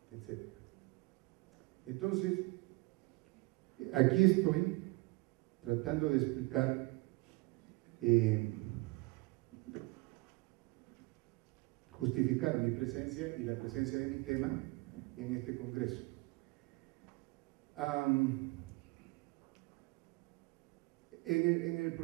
etc. Entonces, aquí estoy tratando de explicar justificar mi presencia y la presencia de mi tema en este congreso. En el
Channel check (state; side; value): quieter; left; 24.4 dB